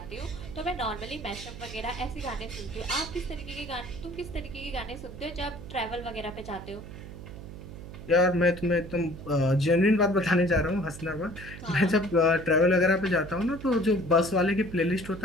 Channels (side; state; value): right; noise; hum, 13 dB below the sound